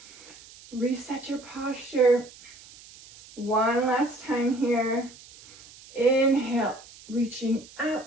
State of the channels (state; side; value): noise; right; hiss, 21 dB below the sound